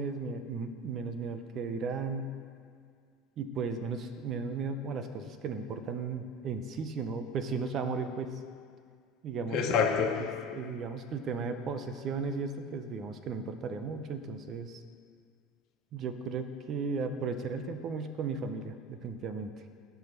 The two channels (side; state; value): both; normal; correlation 0.33